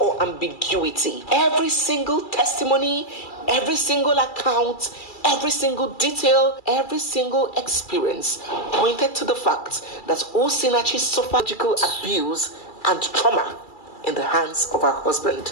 ambiguity. Every single testimony, every single account, every single detail, every single experience pointed to the fact that Osinachi suffered physical abuse and trauma in the hands of her husband,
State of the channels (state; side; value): late; right; 2.3 ms